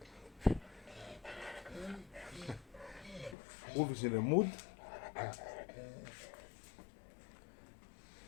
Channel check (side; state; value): right; drops out; at 3.4 s